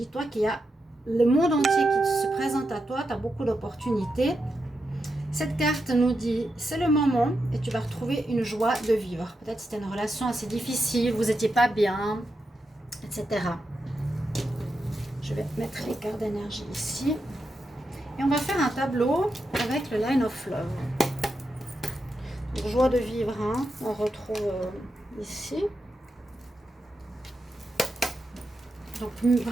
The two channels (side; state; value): both; normal; correlation 0.87